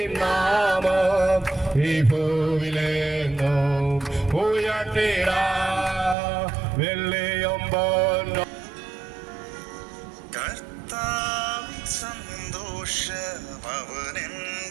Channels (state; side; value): drops out; left; at 6.2 s